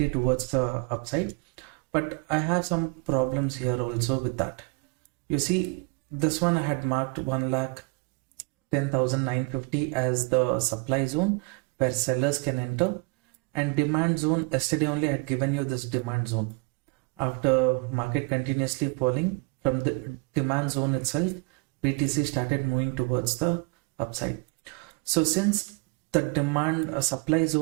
towards the upside. But I have some problems here also with that. You see, this one I had marked 1,10,950 as the supply zone where sellers can enter, and demand zone, yesterday only I had given you this demand zone. After market continuously falling from the demand zone itself, BTC started moving towards the upside. So since the demand supply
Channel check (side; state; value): left; quieter; 30.5 dB